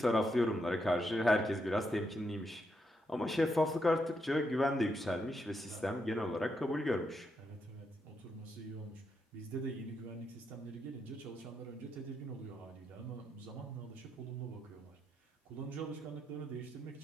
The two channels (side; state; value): both; normal; correlation 0.81